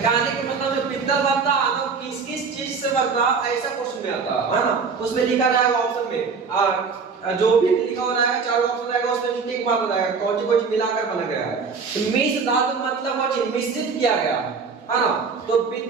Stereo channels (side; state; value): left; quieter; 5.2 dB